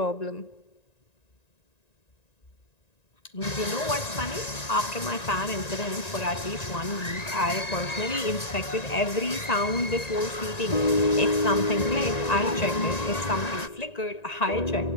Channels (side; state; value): right; late; 1.9 ms